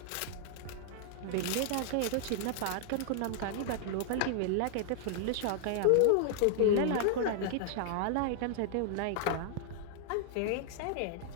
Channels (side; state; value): both; different; correlation 0.00